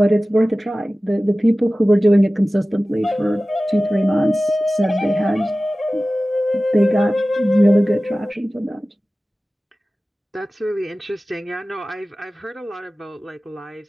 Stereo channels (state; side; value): normal; both; correlation 0.96